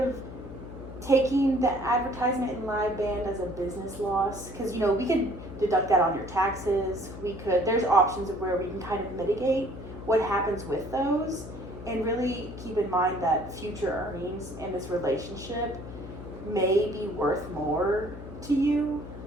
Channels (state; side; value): noise; left; hum, 12 dB below the sound